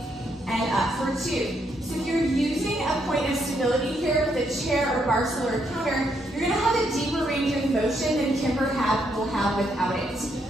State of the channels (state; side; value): normal; both; correlation 0.76